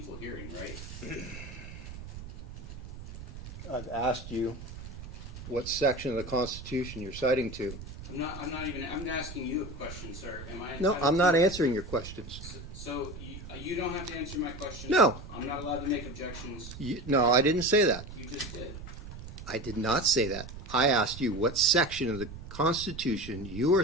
hearing, right? I've asked you what section of the Constitution you're citing to. I'm asking you a question, sir. Am I No, entitled I'm not to- answering your questions. So you don't have to answer my questions? No. I'm not allowed to make objections? No, I didn't say that. You just did. I did not say that. I asked you what section of the Constitution you are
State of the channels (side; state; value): right; noise; rumble, 12 dB below the sound